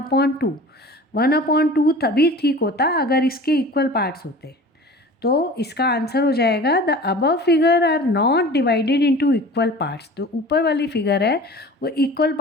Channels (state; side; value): normal; both; correlation 0.40